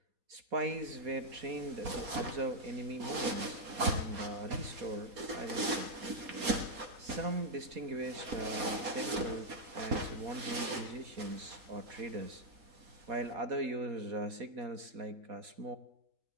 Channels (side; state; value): left; late; 4.3 ms